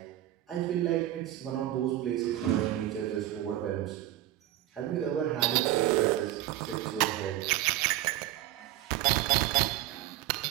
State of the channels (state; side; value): quieter; left; 14.4 dB